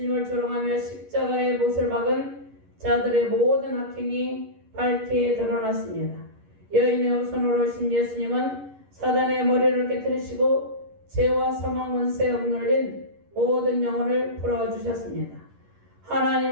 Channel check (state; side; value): late; left; 11 ms